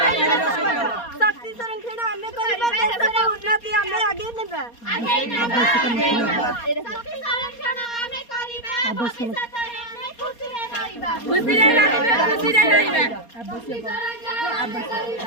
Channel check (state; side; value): late; right; 4.2 ms